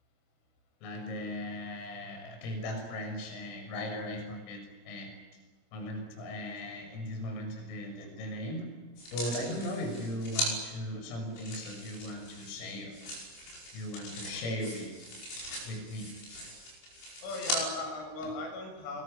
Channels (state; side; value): late; right; 25 ms